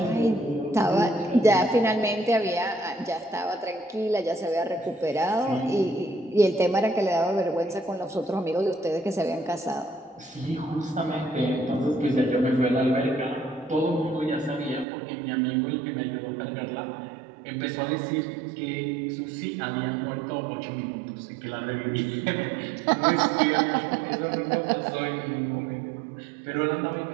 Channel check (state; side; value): drops out; left; at 14.9 s